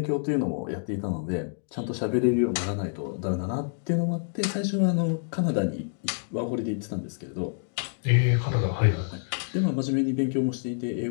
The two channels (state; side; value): silent; right; digital silence